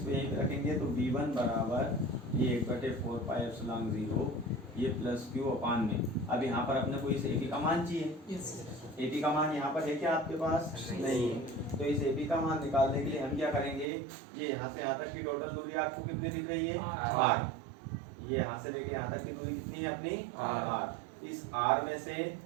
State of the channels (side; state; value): left; drops out; at 13.9 s